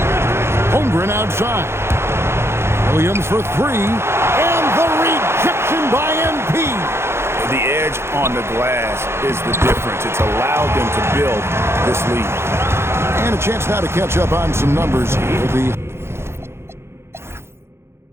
Holmgren outside. Williams for 3. And the rejection by MP. The edge on the glass is the difference. It's allowed them to build this lead. And a chance now to catch up on some numbers here. The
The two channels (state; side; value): late; left; 0.12 ms